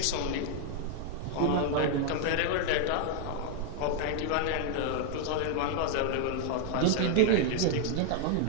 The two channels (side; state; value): both; different; correlation 0.00